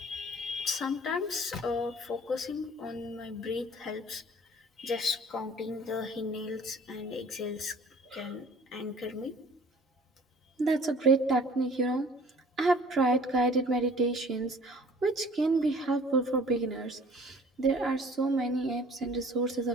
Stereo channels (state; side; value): normal; both; correlation 0.51